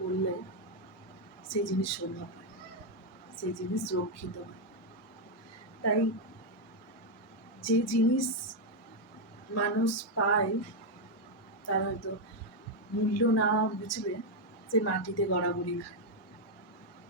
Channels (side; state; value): both; normal; correlation 0.02